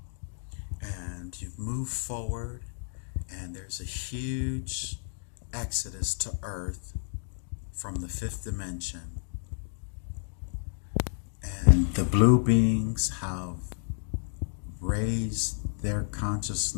and you've moved forward, and there's a huge exodus to Earth from the fifth dimension. And the blue beings have raised their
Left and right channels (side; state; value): right; silent; digital silence